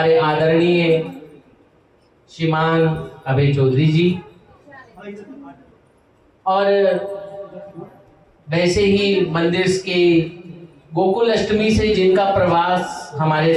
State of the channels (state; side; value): identical; both; correlation 1.00